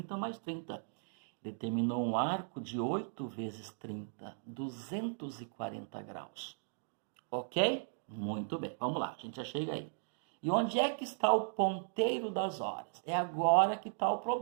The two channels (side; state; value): left; silent; digital silence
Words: mais 30. Determinou um arco de 8 vezes 30, 240 graus. Ok? Muito bem, vamos lá, a gente já chega aí. E onde é que está o ponteiro das horas? É agora que está o